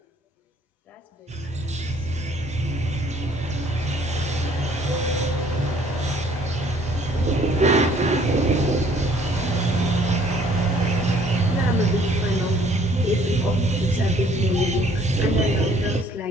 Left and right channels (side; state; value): both; normal; correlation 0.59